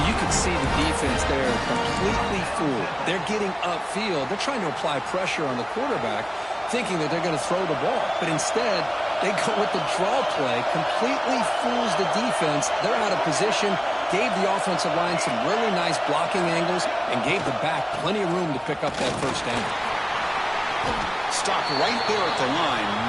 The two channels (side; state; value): both; identical; correlation 1.00